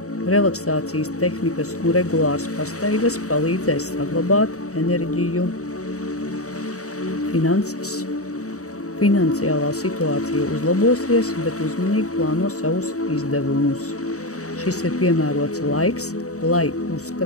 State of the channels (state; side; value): late; right; 0.65 ms